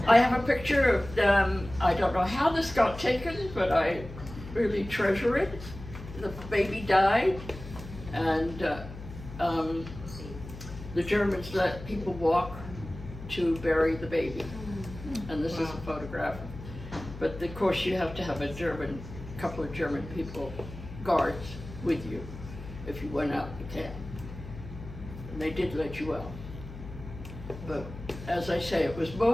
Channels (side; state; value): left; noise; hum, 13 dB below the sound